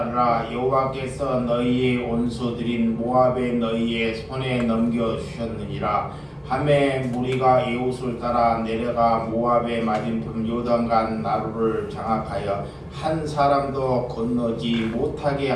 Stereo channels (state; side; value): identical; both; correlation 1.00